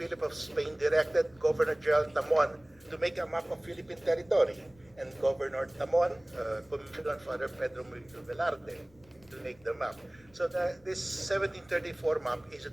of Spain directed Governor General Tamon to make a map of Philippine territory. And Governor Tamon commissioned on Father Pedro Murillo Velarde to make the map. So this 1734 map is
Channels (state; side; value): noise; left; rumble, 28 dB below the sound